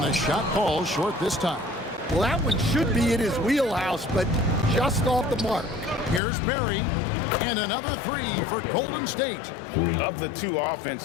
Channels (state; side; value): drops out; right; at 6.2 s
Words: the shot falls short this time. Well, that one should be in his wheelhouse, but just off the mark. Here's Barry, and another 3 for Golden State. Of the two